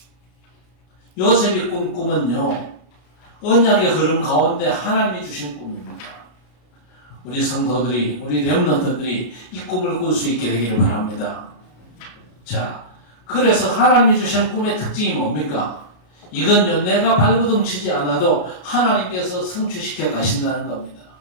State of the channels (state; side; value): late; right; 33 ms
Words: 요셉이 꾼 꿈은요, 언약의 흐름 가운데 하나님이 주신 꿈입니다. 우리 성도들이, 우리 렘넌트들이 이 꿈을 꿀 수 있게 되기를 바랍니다. 자, 그래서 하나님이 주신 꿈의 특징이 뭡니까? 이건요, 내가 발버둥 치지 않아도 하나님께서 성취시켜 가신다는 겁니다.